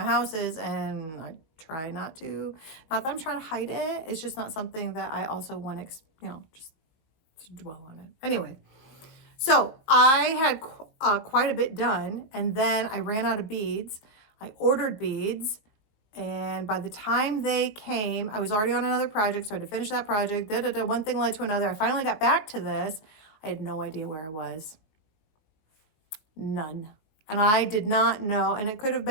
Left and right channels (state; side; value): late; right; 19 ms